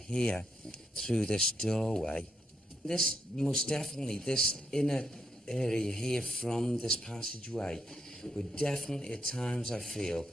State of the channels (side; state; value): both; normal; correlation 0.78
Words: through this doorway, this most definitely, this inner area here from this passageway would definitely at times, I feel,